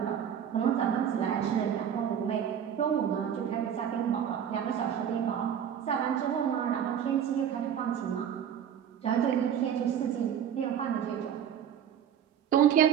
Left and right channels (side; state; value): left; quieter; 9.0 dB